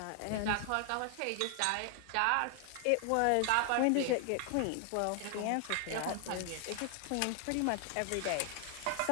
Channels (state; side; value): different; both; correlation 0.00